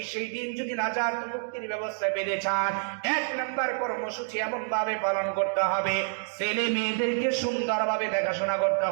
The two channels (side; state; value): left; silent; digital silence